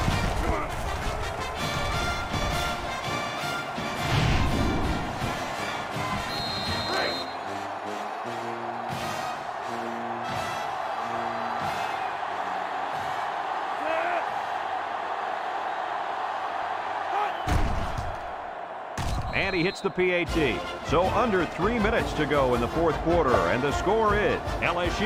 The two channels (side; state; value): both; identical; correlation 1.00